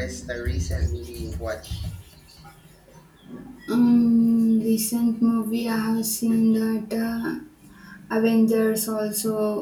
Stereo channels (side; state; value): both; identical; correlation 1.00